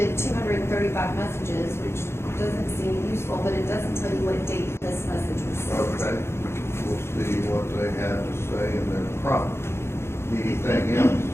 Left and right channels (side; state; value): right; late; 0.12 ms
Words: 235 messages, which doesn't seem useful, but it doesn't tell you what date this message was sent. Okay. We'll see what they have to say in their prompt. Anything else?